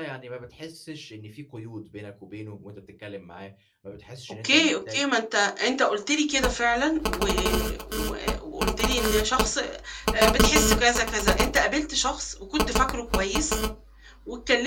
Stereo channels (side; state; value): both; identical; correlation 1.00